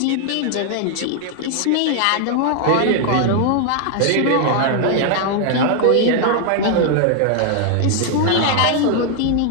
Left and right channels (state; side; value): different; both; correlation 0.00